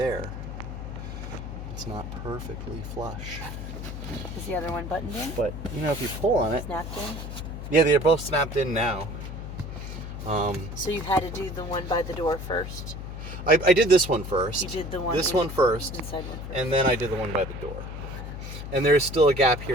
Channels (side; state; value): left; noise; hum, 8 dB below the sound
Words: It's not perfectly flush. Is the other one buttoned in? But you know, if you pull on it, snapped in. Yeah, they're both snapped in now. So you had to do the one by the door first? I did this one first. You did the one one first. Inside one first. And then I did the one by the door. And there's still a gap